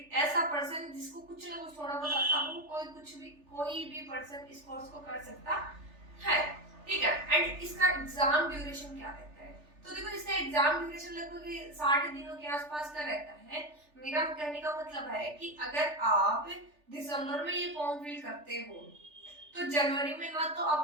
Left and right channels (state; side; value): late; left; 3.4 ms